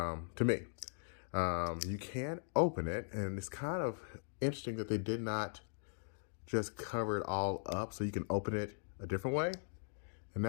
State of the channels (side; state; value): right; silent; digital silence